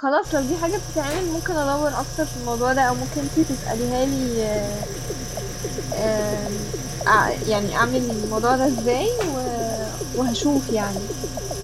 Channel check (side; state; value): both; identical; correlation 1.00